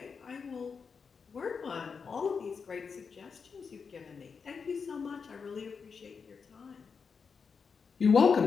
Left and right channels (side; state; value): right; quieter; 5.6 dB